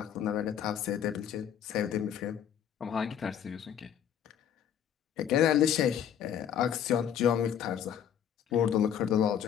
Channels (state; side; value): quieter; right; 9.2 dB